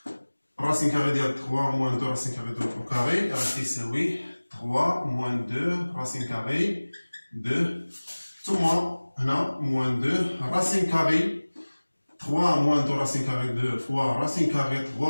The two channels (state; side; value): inverted; both; correlation -1.00